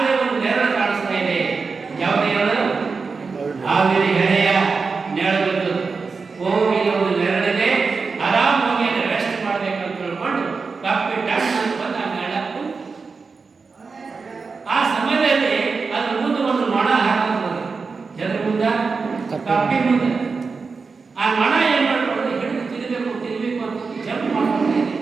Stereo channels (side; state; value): left; quieter; 4.7 dB